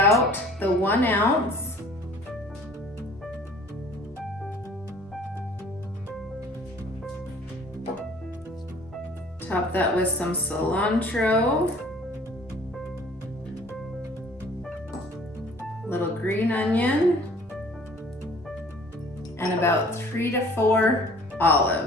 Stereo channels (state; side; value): normal; both; correlation 0.51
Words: the 1 ounce. Top that with some cilantro. Little green onion. And about 3 to 4